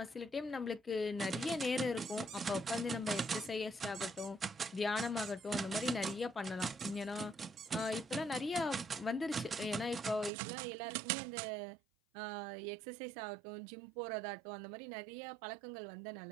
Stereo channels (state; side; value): drops out; left; at 10.3 s